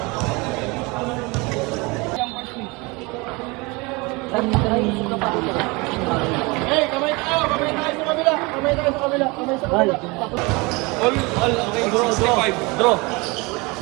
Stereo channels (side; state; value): left; quieter; 26.0 dB